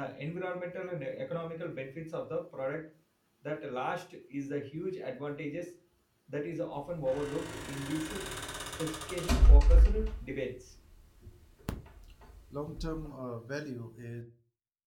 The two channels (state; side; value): identical; both; correlation 1.00